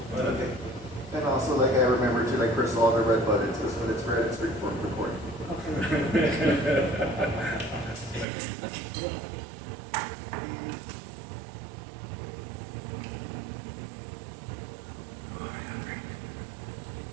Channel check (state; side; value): drops out; left; at 8.2 s